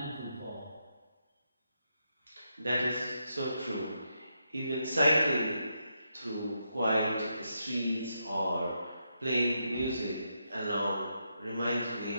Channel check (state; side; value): inverted; both; correlation -0.82